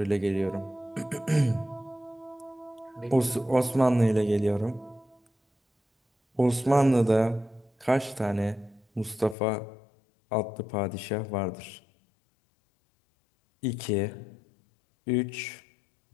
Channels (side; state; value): right; drops out; at 9.3 s